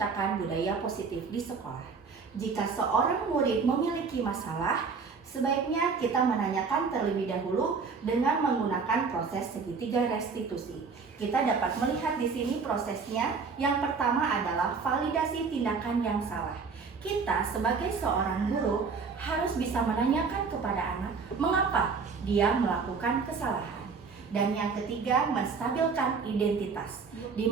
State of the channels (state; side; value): quieter; left; 5.1 dB